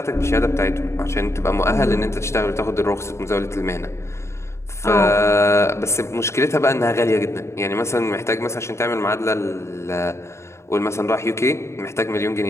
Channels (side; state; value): right; late; 0.13 ms